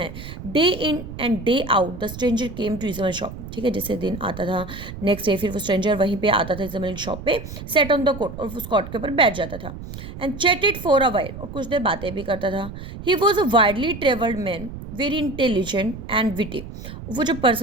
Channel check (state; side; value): noise; right; rumble, 11 dB below the sound